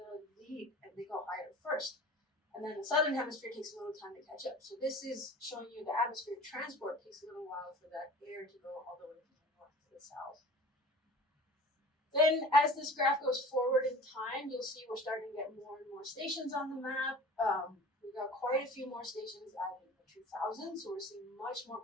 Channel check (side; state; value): both; normal; correlation 0.42